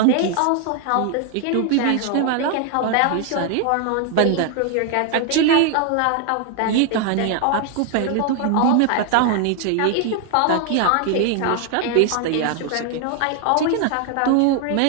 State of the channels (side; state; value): both; different; correlation 0.00